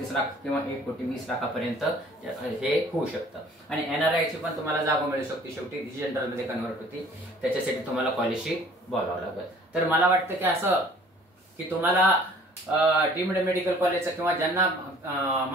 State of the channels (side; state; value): both; normal; correlation 0.53